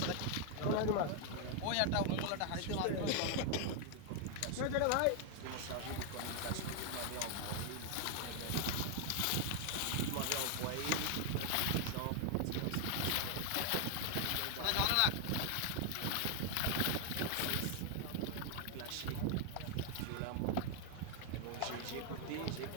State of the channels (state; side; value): different; both; correlation 0.00